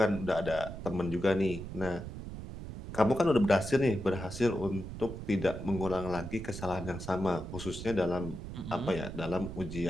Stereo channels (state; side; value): noise; right; rumble, 9 dB below the sound